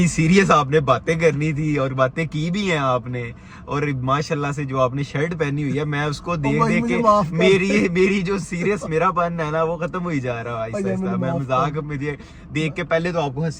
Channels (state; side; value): identical; both; correlation 1.00